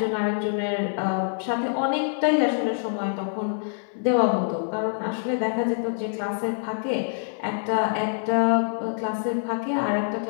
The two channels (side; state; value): right; silent; digital silence